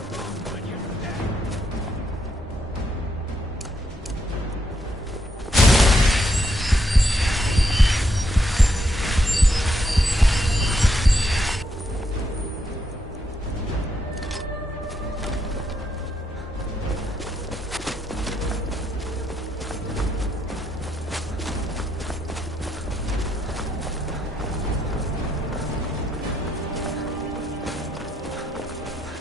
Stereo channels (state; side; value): normal; both; correlation 0.77